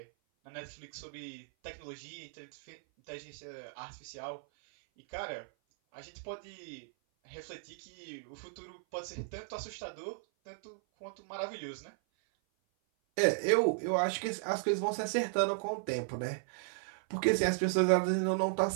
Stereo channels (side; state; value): left; silent; 54 dB below the other